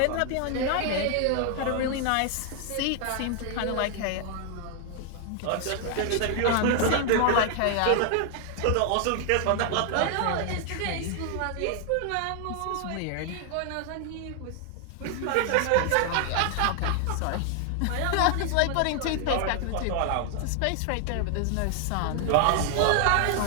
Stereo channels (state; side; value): different; both; correlation 0.00